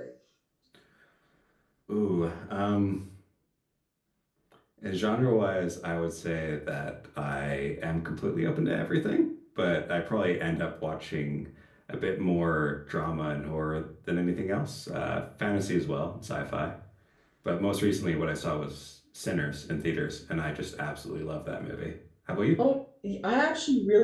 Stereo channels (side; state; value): both; identical; correlation 1.00